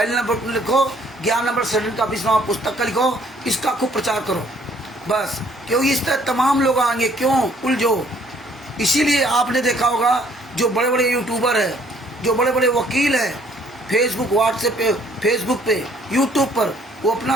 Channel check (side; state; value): both; normal; correlation 0.62